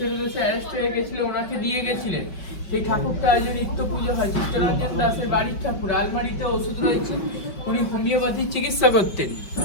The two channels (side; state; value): right; late; 5.0 ms